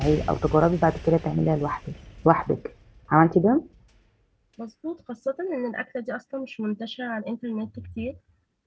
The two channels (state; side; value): identical; both; correlation 1.00